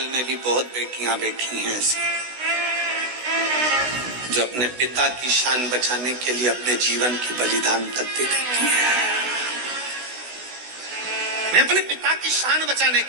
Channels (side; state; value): left; late; 16 ms